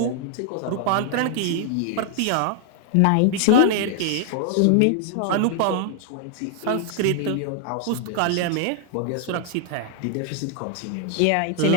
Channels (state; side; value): different; both; correlation 0.00